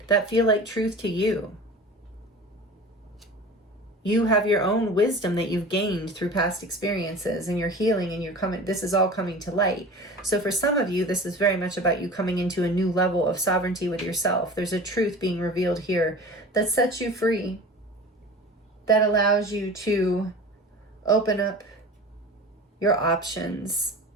that feel like truth to you. You have your own wisdom that you've gained through past experiences, and you're healing, and you're coming, this is all coming to light. So for some of you, this is very much about you coming into a new level of sovereignty with yourself. There's a truth being revealed here that sets you free, that allows you to open up your options,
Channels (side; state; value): both; normal; correlation 0.37